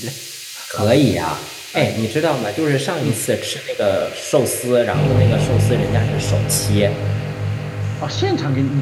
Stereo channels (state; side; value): identical; both; correlation 1.00